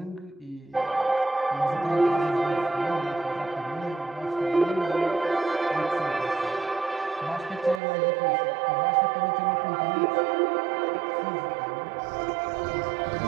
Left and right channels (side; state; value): left; drops out; at 7.8 s